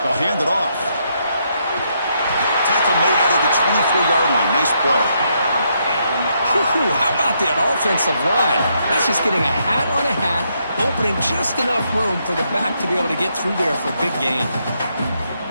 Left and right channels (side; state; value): both; inverted; correlation -0.76